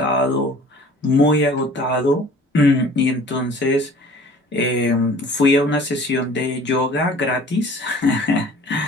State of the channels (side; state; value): both; normal; correlation 0.48